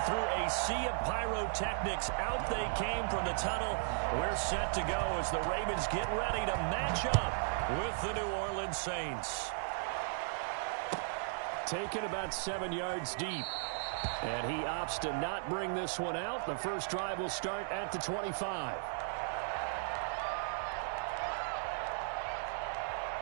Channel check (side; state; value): left; silent; digital silence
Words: through a sea of pyrotechnics, out they came from the tunnel. We're set to go as the Ravens get ready to match up with the New Orleans Saints. Taken about 7 yards deep. And he opts to not bring this one out. The first drive will start at the 25.